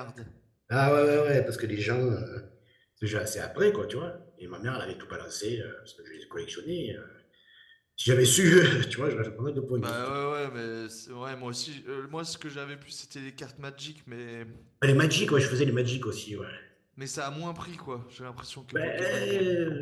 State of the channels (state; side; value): identical; both; correlation 1.00